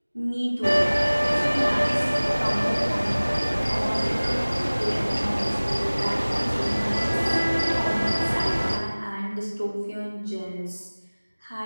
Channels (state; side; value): inverted; both; correlation -1.00